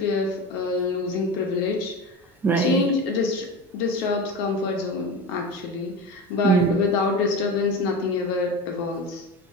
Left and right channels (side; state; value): both; normal; correlation 0.27